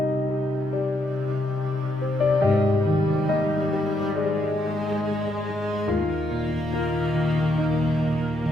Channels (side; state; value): both; normal; correlation 0.77